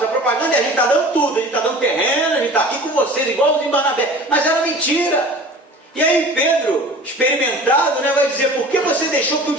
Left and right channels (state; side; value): normal; both; correlation 0.41